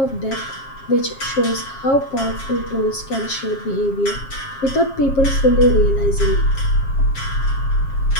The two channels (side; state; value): right; late; 7.4 ms